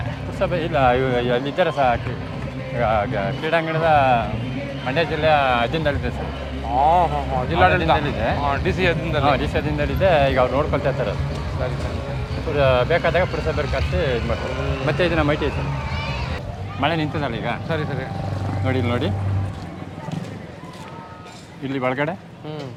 ಪುರಸಭೆ ಇಲ್ಲ, ಅಲ್ಲಿದ್ದಾರೆ ಸಹ. ಕ್ರೀಡಾಂಗಣದ ಮಂಡ್ಯ ಜಿಲ್ಲೆಯ ಅಧೀನದಲ್ಲಿದೆ ಸರ್. ಜಿಲ್ಲಾಡಳಿತದಲ್ಲಿದೆ, ಡಿ ಸಿ ಅಧೀನದಲ್ಲಿದೆ. ಈಗ ಅವ್ರು ನೋಡ್ಕೊಳ್ತಾ ಇರ್ತಾರೆ. ಸರಿ, ಬೇಕಾದಾಗ ಪುರಸಭೆ ಕರೆಸಿ ಇದು ಮಾಡ್ತಾರೆ. ಮತ್ತೆ ಇದನ್ನ ಮೈಟಿ ಸರ್, ಮಳೆ ನಿಂತದಲ್ಲ ಈಗ. ಸರಿ ಸರಿ, ನೋಡಿ ಇಲ್ಲಿ ನೋಡಿ, ಇಲ್ಲಿ ಒಳಗಡೆ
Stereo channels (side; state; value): both; identical; correlation 1.00